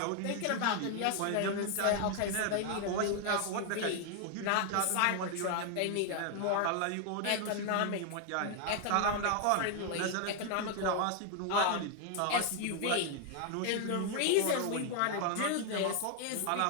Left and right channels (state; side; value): different; both; correlation 0.00